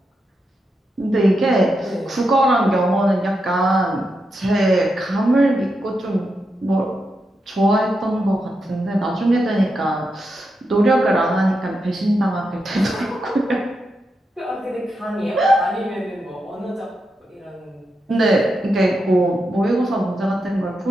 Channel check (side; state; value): both; normal; correlation 0.86